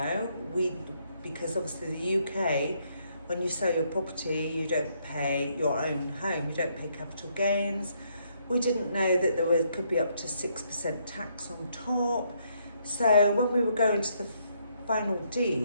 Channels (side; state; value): both; inverted; correlation -0.73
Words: Because obviously the UK, when you sell your property, you don't pay your own home, you don't pay capital gains. We didn't know that could be up to 6% tax on top. So when we were going to the final